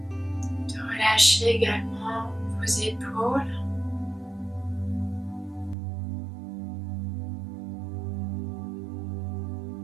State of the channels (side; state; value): left; drops out; at 5.8 s